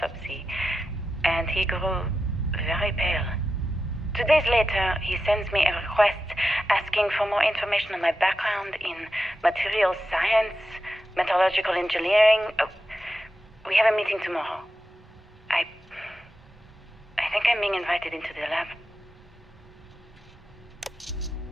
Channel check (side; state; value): both; normal; correlation 0.90